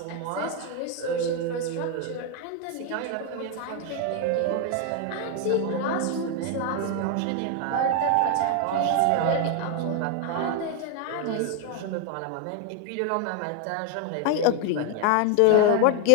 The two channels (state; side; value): different; both; correlation 0.01